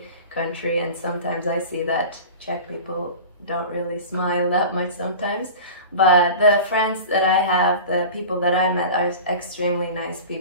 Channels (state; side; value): inverted; both; correlation -0.35